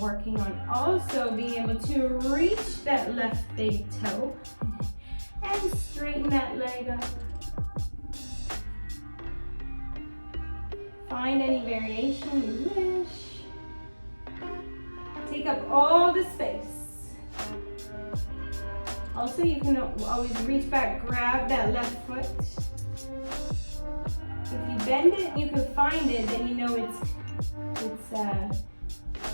working on also being able to reach that left big toe and straighten that leg up. Find any variation you wish. Take up all the space. Also, you can always reach back, grab that left foot. If you bend it and you can find it, then you know it's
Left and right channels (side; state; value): both; inverted; correlation -1.00